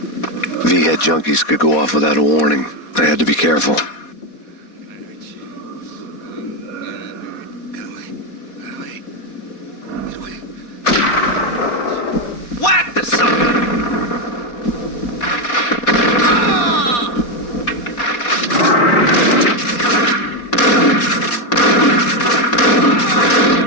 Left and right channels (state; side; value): late; right; 4.2 ms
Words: V-head junkies could go off without a warning. I had to be careful. Whack the sucker!